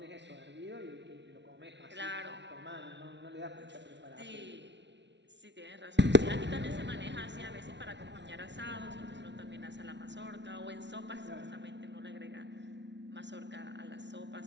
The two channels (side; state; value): left; late; 0.51 ms